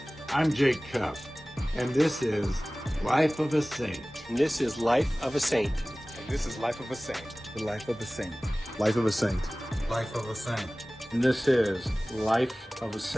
I'm Jake Cup. And this is Life of a Saint. And this is Life of a Saint. And this is Life of a Saint. The Life of a Saint. Life of a Saint. Life of a Saint. And this is Life of a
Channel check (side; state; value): both; normal; correlation 0.98